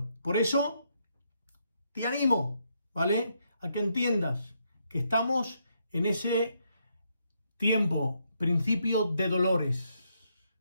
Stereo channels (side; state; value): both; inverted; correlation -0.77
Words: Por eso te animo, ¿vale?, a que entiendas que estamos en ese tiempo, principio de dolores.